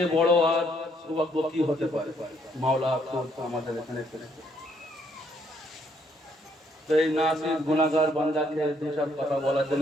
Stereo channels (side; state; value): both; normal; correlation 0.70